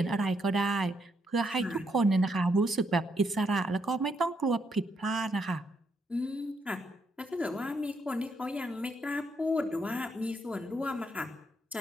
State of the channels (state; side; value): normal; both; correlation 0.76